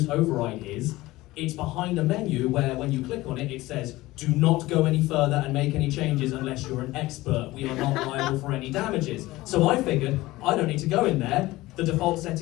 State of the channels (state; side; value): quieter; right; 18.6 dB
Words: Override is, it's behind a menu where when you click on it, it says, do not go any further and make any changes unless you're an expert. We are not liable for any damages. So I figured, I don't need to go in there. The default